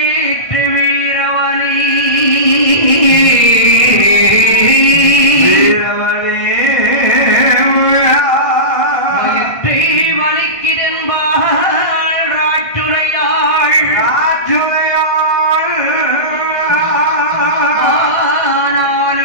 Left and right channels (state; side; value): late; right; 1.5 ms